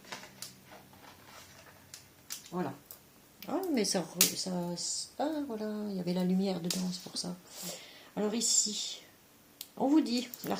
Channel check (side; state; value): both; identical; correlation 1.00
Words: Voilà. Ah, mais ah, voilà, il y avait la lumière dedans, c'est pour ça. Alors ici, on vous dit,